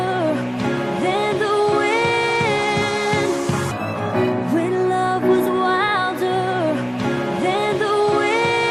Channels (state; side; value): identical; both; correlation 1.00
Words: than the wind. When love was wilder than the